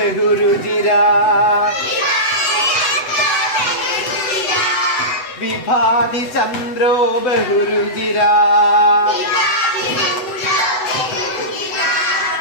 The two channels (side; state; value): right; late; 8.0 ms